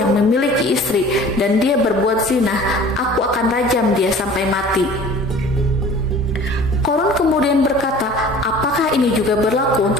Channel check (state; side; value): normal; both; correlation 0.45